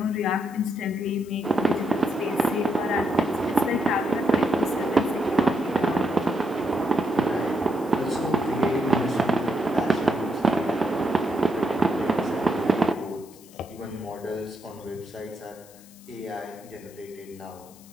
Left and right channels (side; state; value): left; noise; hiss, 23 dB below the sound